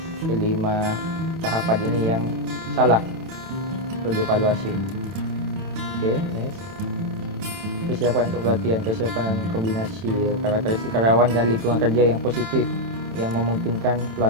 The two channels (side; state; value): left; late; 27 ms